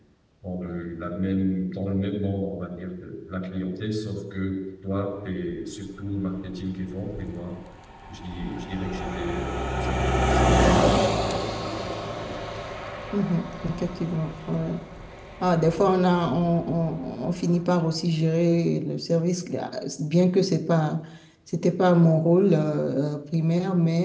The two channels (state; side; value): identical; both; correlation 1.00